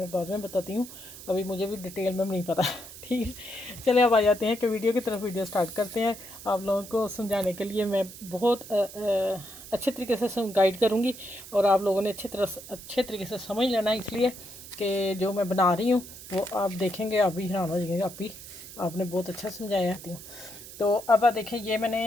बाद में बताती हूँ, अभी मुझे भी डिटेल में नहीं पता। ठीक है, चले अब आ जाते हैं कि वीडियो की तरफ। वीडियो स्टार्ट करते हैं। आप लोगों को समझाने के लिए मैं बहुत अच्छे तरीके से गाइड करूँगी और आप लोगों ने अच्छे तरीके से समझ लेना है, इसलिए कि जो मैं बना रही हूँ वो आप देखेंगे, आप भी हैरान हो जाएंगे। आप भी आपने बहुत अच्छा समझाया हूँ। तो अब आप देखें, ये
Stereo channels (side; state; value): right; noise; hiss, 15 dB below the sound